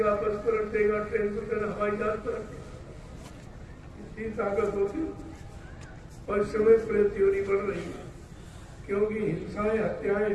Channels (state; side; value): identical; both; correlation 1.00